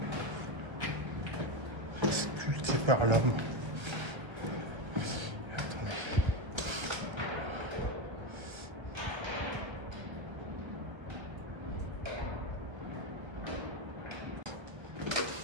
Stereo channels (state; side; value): late; left; 1.3 ms